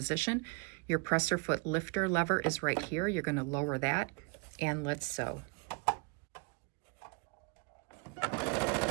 Your presser foot lifter lever is right here. You're going to lower that, and let's sew.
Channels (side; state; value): left; quieter; 30.5 dB